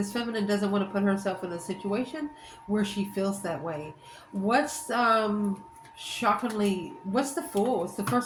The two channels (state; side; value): identical; both; correlation 1.00